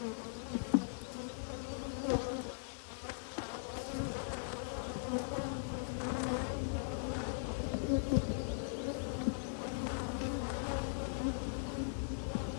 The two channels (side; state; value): right; silent; digital silence